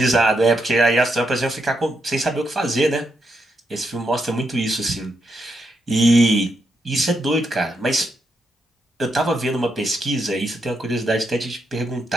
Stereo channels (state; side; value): normal; both; correlation 0.81